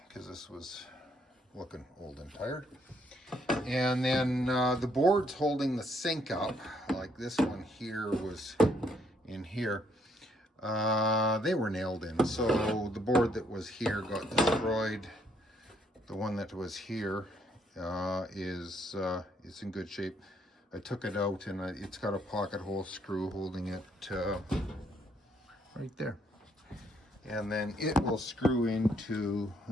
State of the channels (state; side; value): normal; both; correlation 0.70